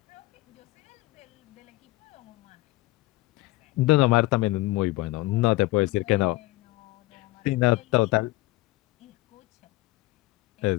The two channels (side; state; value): right; quieter; 19.6 dB